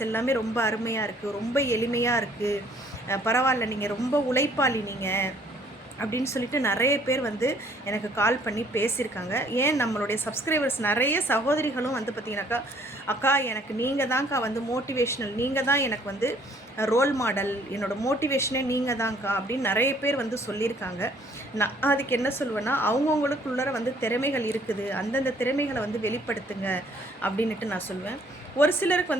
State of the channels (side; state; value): both; normal; correlation 0.61